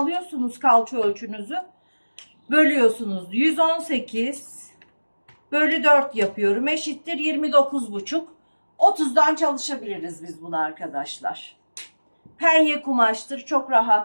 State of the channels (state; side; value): inverted; both; correlation -1.00